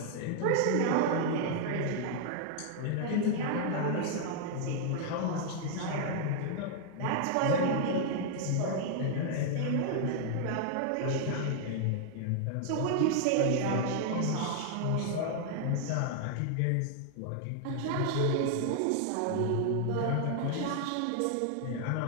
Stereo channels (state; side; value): different; both; correlation 0.00